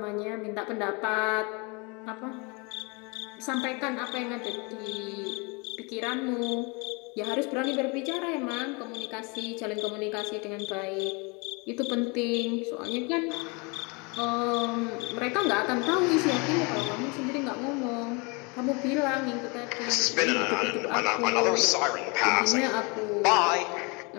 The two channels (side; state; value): right; quieter; 30.0 dB